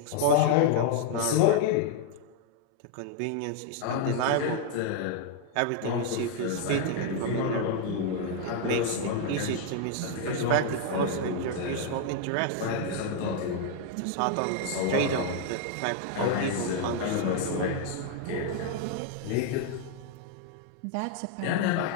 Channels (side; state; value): both; different; correlation 0.00